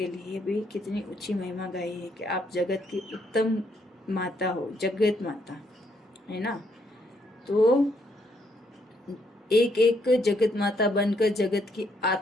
लिए भी कितनी ऊंची महिमा गाई है कि आप जगत की उत्तम माता हो, जगत माता है ना। तो एक एक जगत माता बनकर जगत की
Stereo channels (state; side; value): normal; both; correlation 0.72